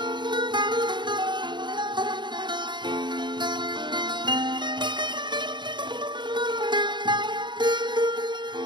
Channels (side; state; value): left; late; 0.22 ms